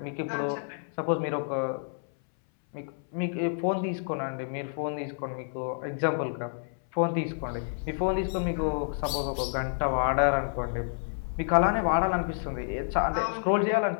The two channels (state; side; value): silent; right; 59 dB below the other